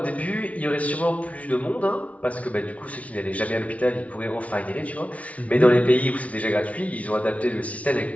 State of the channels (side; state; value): right; late; 0.066 ms